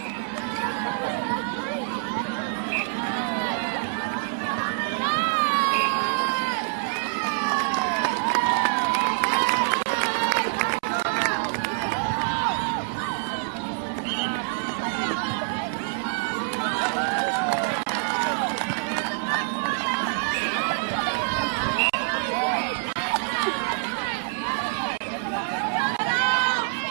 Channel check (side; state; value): left; silent; 61 dB below the other